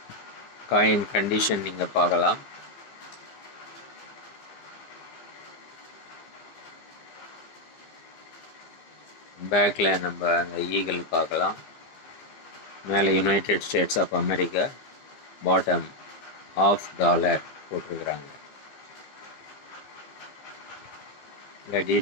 காயின் கண்டிஷன் நீங்கள் பார்க்கலாம். பேக்கில் நம்ம அந்த ஈகிள் பார்க்கலாம். மேலே United States of America, bottom $1/2 போட்டிருக்கிறாங்க. இந்த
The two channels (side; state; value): right; late; 15 ms